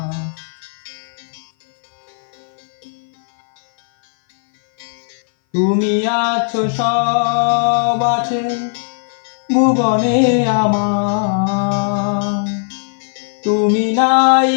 তুমি আছো সব আছে ভুবনে আমার, তুমি নাই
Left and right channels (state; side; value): silent; right; 59 dB below the other